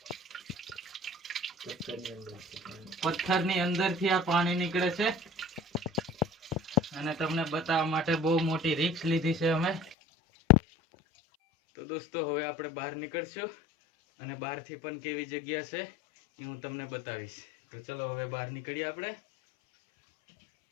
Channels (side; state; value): right; drops out; at 10.0 s